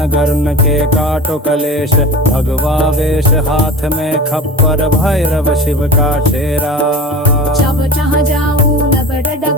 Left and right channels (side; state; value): both; normal; correlation 0.34